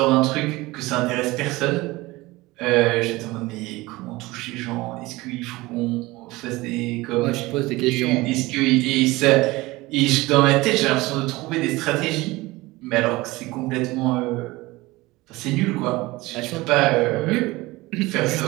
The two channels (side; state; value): left; quieter; 20.5 dB